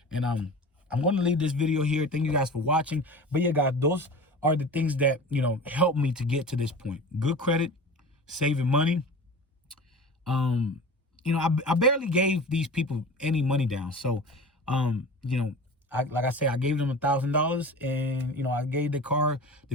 And I'm going to leave this video here. Thank you guys for watching. But yeah, guys, those are the things that, helped me to get to this point. Good credit, saving money. I barely gave these people any money down. So, like I said, I gave them $1,000, and, I gave the car, the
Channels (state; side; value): normal; both; correlation 0.35